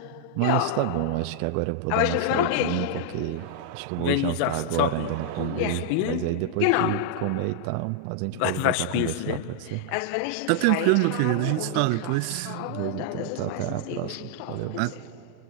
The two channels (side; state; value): both; different; correlation -0.01